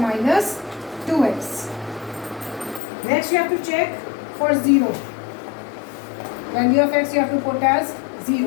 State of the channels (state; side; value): drops out; right; at 2.8 s